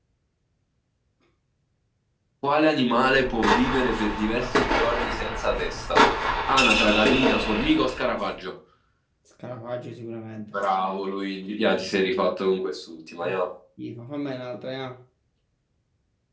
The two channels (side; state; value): both; identical; correlation 1.00